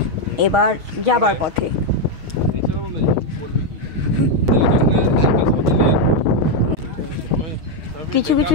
এবার যাবার পথে কিছু কিছু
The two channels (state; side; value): late; left; 6.4 ms